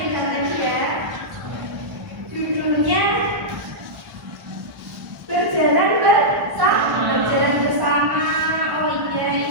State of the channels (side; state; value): left; late; 1.2 ms